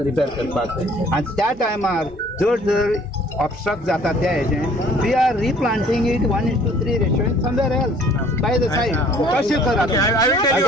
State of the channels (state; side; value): normal; both; correlation 0.55